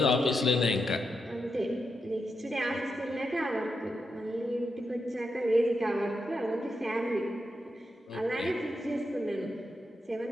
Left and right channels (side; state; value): both; normal; correlation 0.85